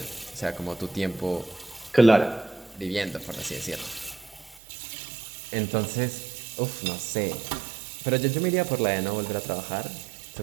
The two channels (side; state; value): left; drops out; at 4.6 s